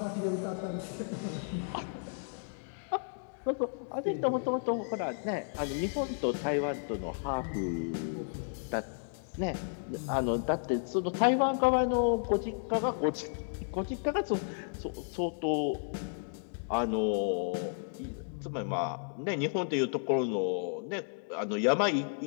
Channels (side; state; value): right; silent; digital silence